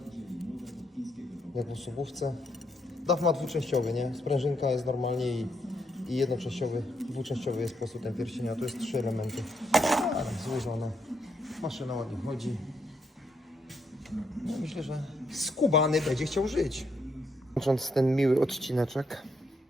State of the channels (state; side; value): normal; both; correlation 0.76